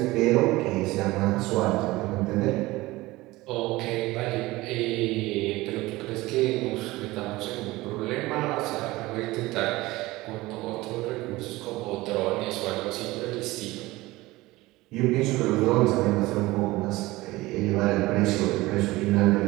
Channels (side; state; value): left; quieter; 19.6 dB